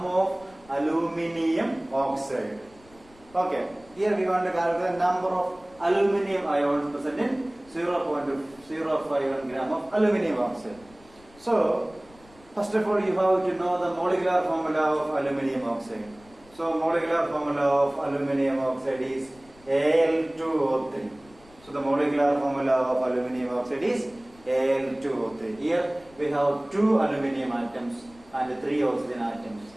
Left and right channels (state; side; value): noise; left; rumble, 26 dB below the sound